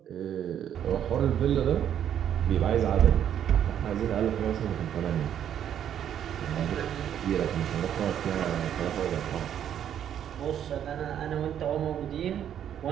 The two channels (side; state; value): left; quieter; 9.7 dB